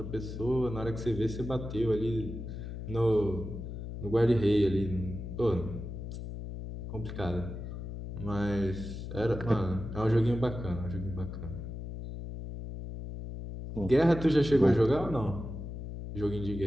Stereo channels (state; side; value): noise; left; hum, 8 dB below the sound